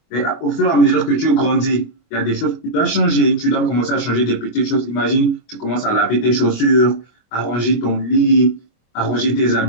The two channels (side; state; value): right; late; 25 ms